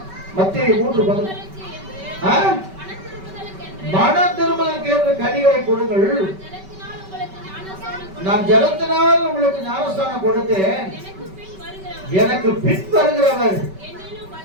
மத்தேயு 3:11. மன திரும்பலுக்கு ஏற்ற கனிகளை கொடுங்கள். நான் ஜலத்தினால் உங்களுக்கு ஞானஸ்தானம் கொடுத்தேன். எனக்கு பின் வருகிறவர்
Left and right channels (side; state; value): left; late; 5.2 ms